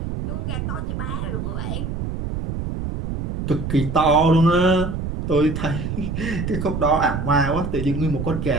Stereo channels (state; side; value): noise; right; rumble, 4 dB below the sound